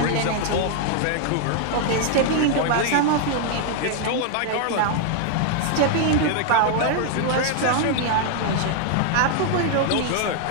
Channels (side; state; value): both; different; correlation 0.00